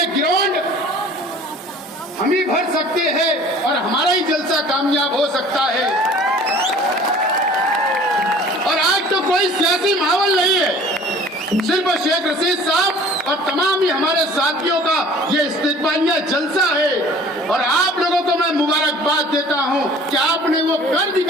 ग्राउंड हम ही भर सकते हैं और हमारा ही जलसा कामयाब हो सकता है। और आज तो कोई सियासी माहौल नहीं है, सिर्फ शेख रशीद साहब और तमाम ही हमारे साथियों का ये इस्तिकबालिया जलसा है। और आप लोगों को मैं मुबारकबाद देता हूं कि आपने वो कर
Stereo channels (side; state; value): both; normal; correlation 0.48